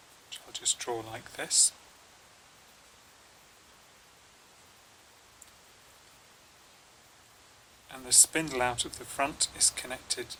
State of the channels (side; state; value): both; identical; correlation 1.00